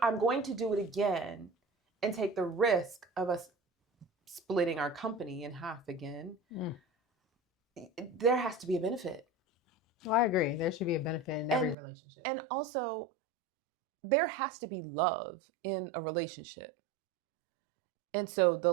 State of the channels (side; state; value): left; drops out; at 11.8 s